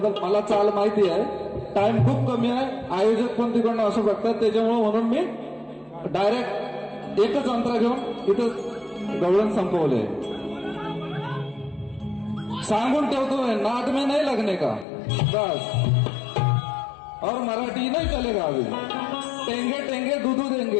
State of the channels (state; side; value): drops out; right; at 14.9 s